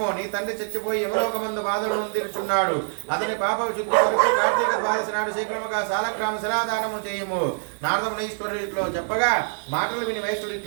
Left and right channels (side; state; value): left; silent; digital silence